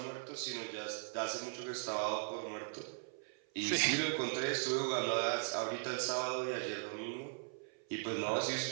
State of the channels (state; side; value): silent; left; 52 dB below the other